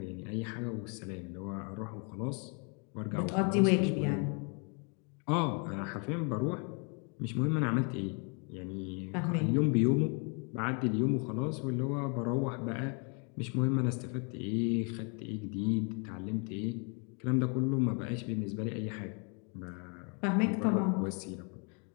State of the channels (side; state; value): right; quieter; 36.4 dB